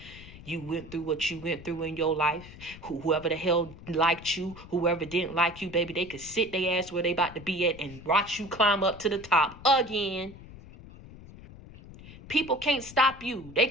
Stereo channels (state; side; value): noise; left; rumble, 17 dB below the sound